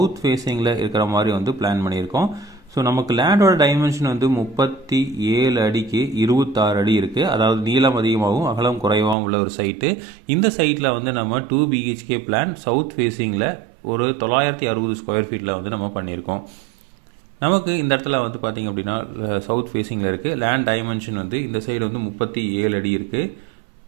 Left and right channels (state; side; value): drops out; left; at 9.2 s